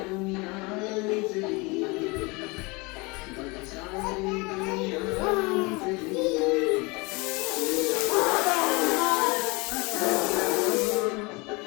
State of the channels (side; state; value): right; quieter; 26.4 dB